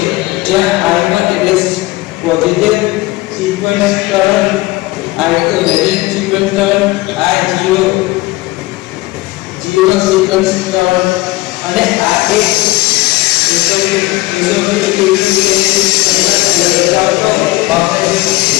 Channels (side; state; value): right; quieter; 20.0 dB